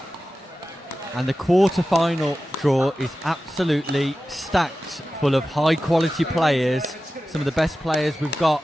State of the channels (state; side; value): normal; both; correlation 0.94